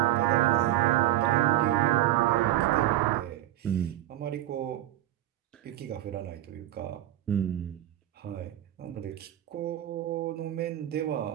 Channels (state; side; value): quieter; left; 13.7 dB